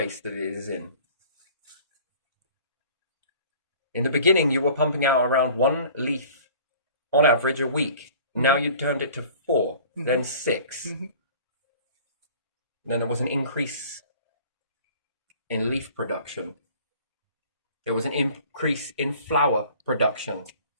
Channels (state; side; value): inverted; both; correlation -0.47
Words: that it is in. In the beginning, you were pumping out around 1 leaf on average a week. Now you turned it to 4, then 6. Then there was an increase in leaf production. There was an increase in flower production.